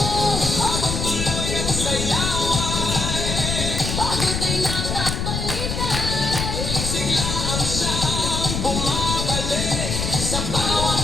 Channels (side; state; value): left; noise; rumble, 2 dB below the sound